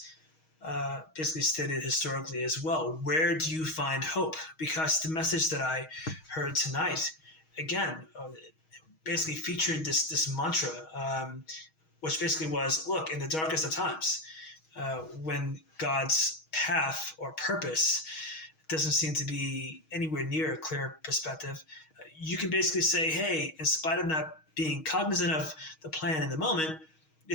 basically stated historically as well. Where do you find hope? Because the message that I heard tonight, again, basically featured this mantra, which basically was, look, in the darkest of times, when God's path or purpose doesn't seem to be anywhere near a clear perspective, you can basically say, hey, in spite of not being cognizant of the plan in the moment,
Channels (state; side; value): late; right; 6.3 ms